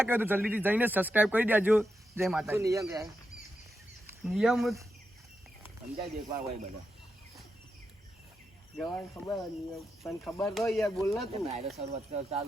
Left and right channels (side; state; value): both; normal; correlation 0.86